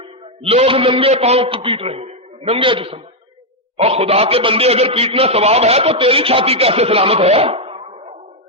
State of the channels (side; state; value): both; normal; correlation 0.00